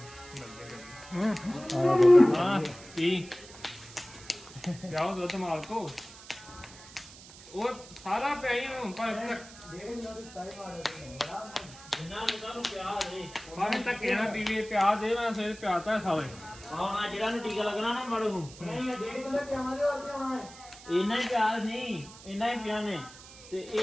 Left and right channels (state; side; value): noise; right; hiss, 18 dB below the sound